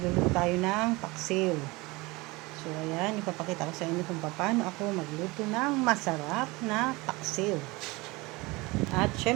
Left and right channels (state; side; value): quieter; left; 23.3 dB